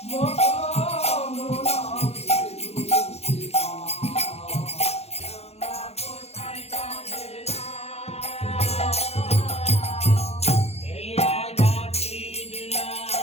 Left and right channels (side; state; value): right; late; 0.30 ms